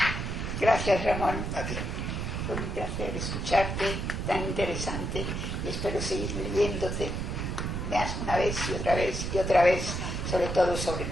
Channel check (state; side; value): noise; right; rumble, 3 dB below the sound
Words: Gracias, Ramón. A ti. Fue un placer escucharte, tan interesante, y espero seguir leyéndote más una vez y otra vez, sobre todo sobre